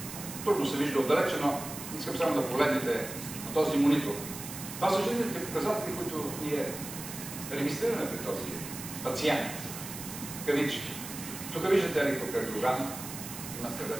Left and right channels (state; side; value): noise; right; hiss, 10 dB below the sound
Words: Трудно се вижда отдалече, но искам само да погледнете на този монитор. Това са жизнените показатели, които ние регистрираме при този пациент. Кавички. Тук виждате електрокардиограма, има